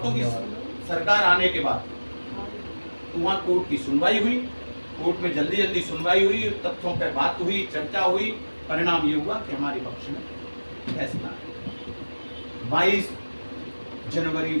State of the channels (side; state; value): both; inverted; correlation -1.00